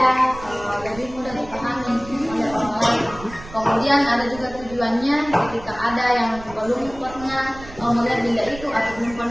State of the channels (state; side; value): noise; right; rumble, 16 dB below the sound